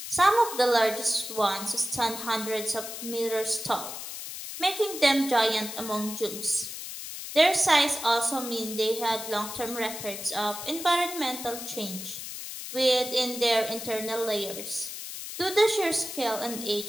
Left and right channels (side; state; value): left; noise; hiss, 8 dB below the sound